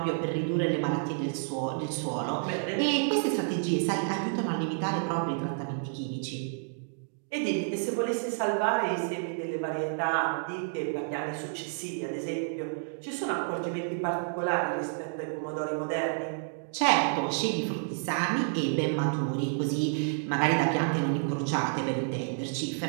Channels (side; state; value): left; silent; digital silence